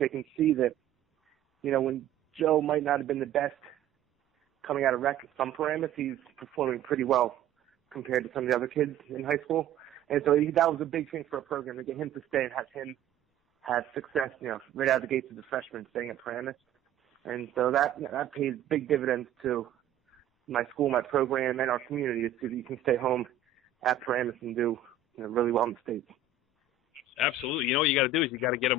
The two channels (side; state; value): left; quieter; 6.9 dB